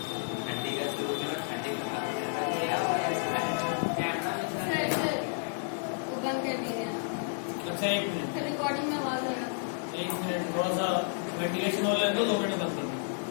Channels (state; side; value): silent; right; digital silence